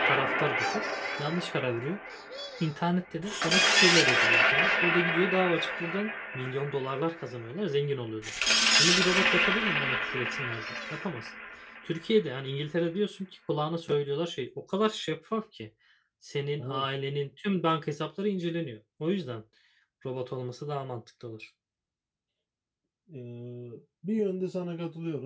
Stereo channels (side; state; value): both; identical; correlation 1.00